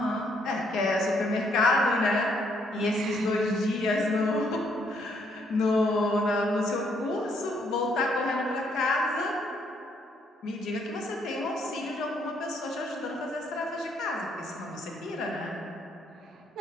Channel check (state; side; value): normal; both; correlation 0.70